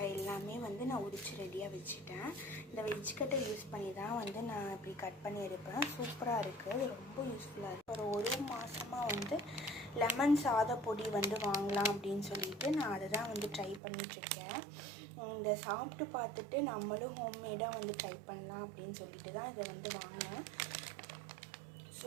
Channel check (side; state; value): left; drops out; at 13.8 s